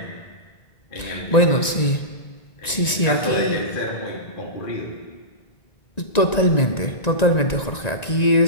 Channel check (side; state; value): right; late; 1.9 ms